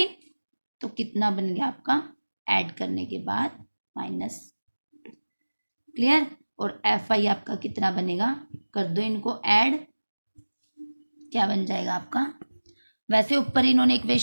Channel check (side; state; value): both; inverted; correlation -1.00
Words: तो कितना बन गया आपका ऐड करने के बाद -2। क्लियर, और एफ आई आपका कितना बनेगा, कर दो इनको ऐड। क्या बन जाएगा आपका, वैसे ऊपर इन्होंने